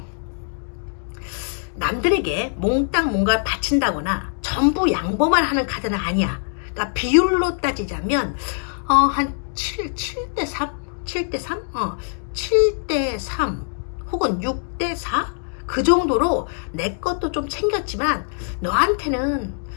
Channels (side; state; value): right; silent; 64 dB below the other